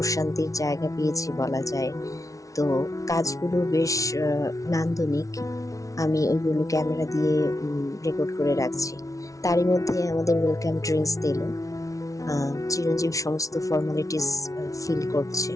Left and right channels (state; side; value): late; right; 0.17 ms